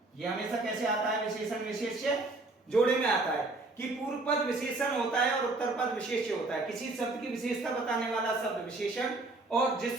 ये हमेशा कैसे आता है, विशेषण विशेष्य जोड़े में आता है कि पूर्व पद विशेषण होता है और उत्तर पद विशेष्य होता है। किसी शब्द की विशेषता बताने वाला शब्द विशेषण, और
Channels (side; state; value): left; quieter; 3.1 dB